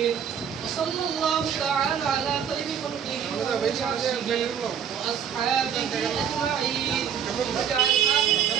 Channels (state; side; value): quieter; left; 8.1 dB